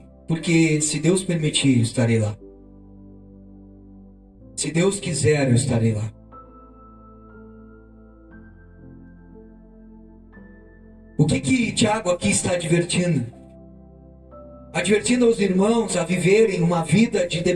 porque se Deus permitir, eu estarei lá. Se Deus quiser, eu estarei lá. O que Tiago aqui está advertindo? Advertindo aos irmãos a viverem uma vida de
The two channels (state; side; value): identical; both; correlation 1.00